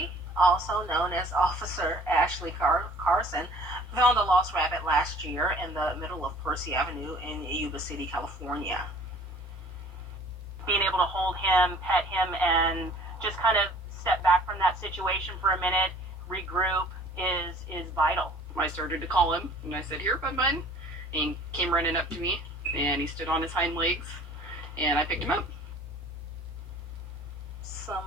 also known as Officer Ashley Carson, found a lost rabbit last year in the middle of Percy Avenue in Yuba City, California. Being able to hold him, pet him, and just kind of step back from that situation for a minute, regroup is vital. I started to call him, and I said, "Here, bud." And he came running up to me, and he stood on his hind legs, and I picked him up.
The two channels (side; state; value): both; normal; correlation 0.51